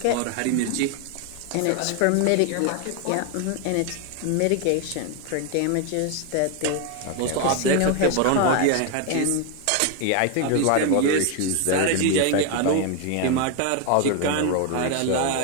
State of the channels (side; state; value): both; different; correlation 0.01